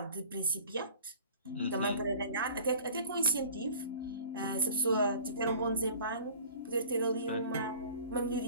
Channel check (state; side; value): inverted; both; correlation -0.45